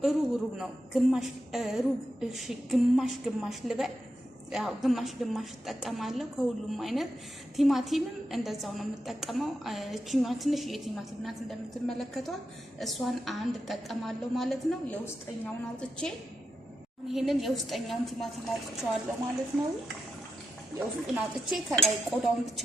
ሩብ ነው፣ ግማሽ ልበል። ያው ግማሽ እጠቀማለሁ ከሁሉም አይነት። ቲማቲምም እንደዛው ነው የምጠቀመው። እቺኛ ትንሽ የቲማቲም ናት እንደምትመለከቷት፣ እሷን አንድ እጠቀማለሁ ማለት ነው። የውስጠኛውን አውጥቼ ይሄንን የውስጠኛውን ቲማቲም አውጥቼዋለሁ ማለት ነው። የውስጡን አውጥቼ ከላይ ቆዳውን ብቻ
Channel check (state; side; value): normal; both; correlation 0.87